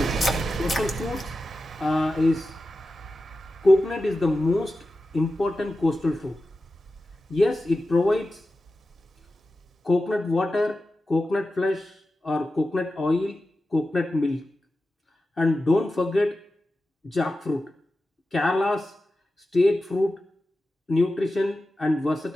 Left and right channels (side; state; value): both; normal; correlation 0.93